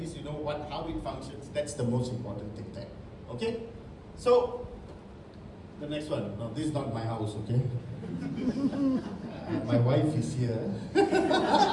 you know how it functions. That's the most important thing there. Okay? So, the next one. No, this is not my house, okay? My wife is here.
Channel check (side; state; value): both; identical; correlation 1.00